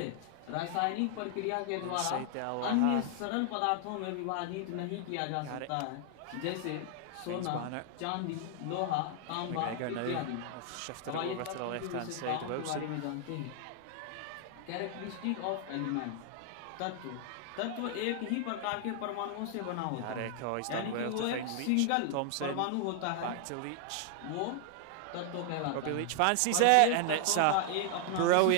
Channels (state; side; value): different; both; correlation 0.00